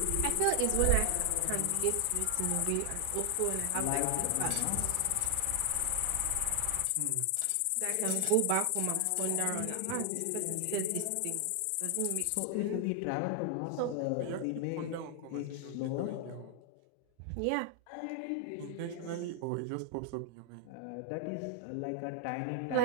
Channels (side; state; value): both; different; correlation 0.00